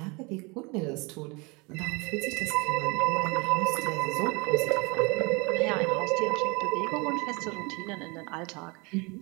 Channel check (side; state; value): left; quieter; 28.1 dB